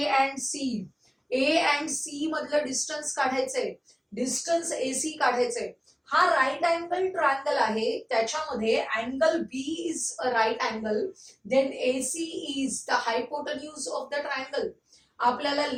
and C? A and C मधलं डिस्टन्स काढायचंय, डिस्टन्स AC काढायचंय. हा राईट अँगल ट्रायंगल आहे, त्याच्यामध्ये angle B is a right angle, then AC is the hypotenuse of the triangle. आपल्याला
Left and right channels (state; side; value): identical; both; correlation 1.00